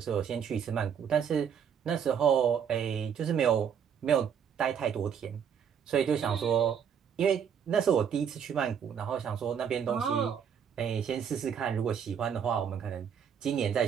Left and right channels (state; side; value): quieter; left; 7.8 dB